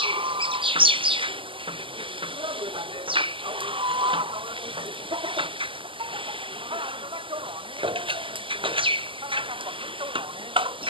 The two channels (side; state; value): left; late; 0.25 ms